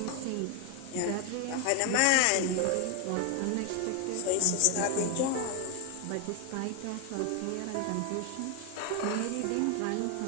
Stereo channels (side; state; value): both; different; correlation 0.01